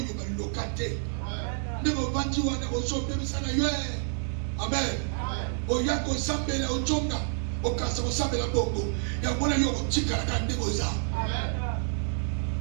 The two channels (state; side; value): silent; left; 59 dB below the other